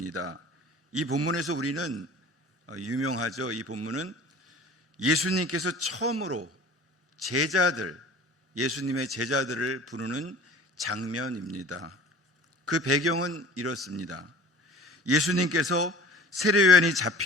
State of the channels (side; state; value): both; normal; correlation 0.44